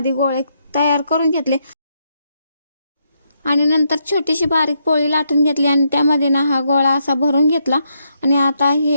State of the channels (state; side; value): inverted; both; correlation -0.78